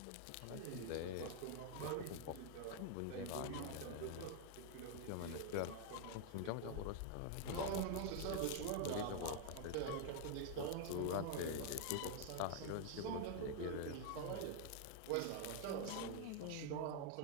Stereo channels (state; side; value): different; both; correlation 0.00